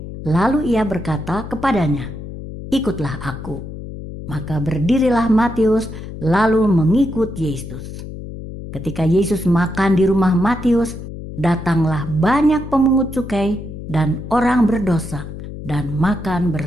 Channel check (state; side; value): noise; left; hum, 10 dB below the sound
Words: Lalu ia berkata kepadanya, "Ikutlah aku." Maka berdirilah Matius lalu mengikut Yesus. Ketika Yesus makan di rumah Matius, datanglah banyak pemungut cukai dan orang berdosa dan makan